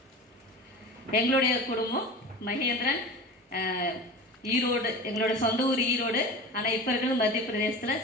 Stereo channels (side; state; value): both; normal; correlation 0.32